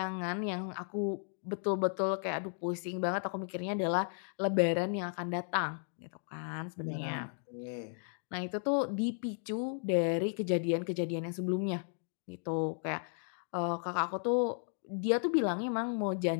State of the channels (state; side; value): silent; right; 55 dB below the other